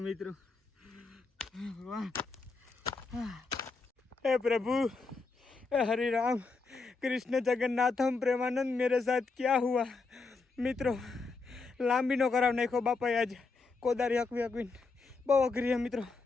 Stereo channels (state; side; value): quieter; right; 4.1 dB